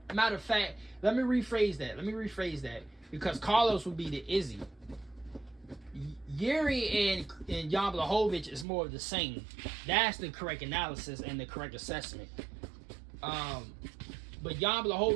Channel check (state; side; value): drops out; left; at 8.7 s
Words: matter of fact, let me rephrase that. Because Carlos would be the Izzy. Jiri and Jan Blachowicz is more of the same. That's the correct analysis and the correct assessment. But Jan